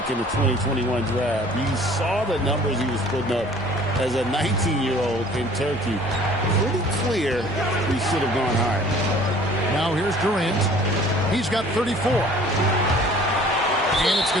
in the 2021 draft. You saw the numbers he was putting up as a 19-year-old in Turkey. Pretty clear he should have gone higher. Now here's Durant. He's got 34. And it's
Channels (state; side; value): normal; both; correlation 0.51